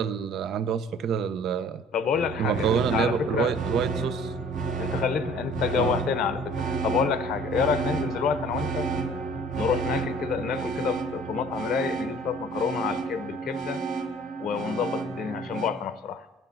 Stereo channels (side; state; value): both; normal; correlation 0.51